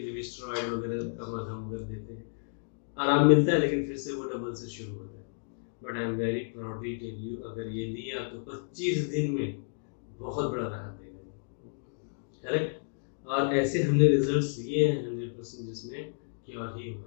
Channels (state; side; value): silent; right; digital silence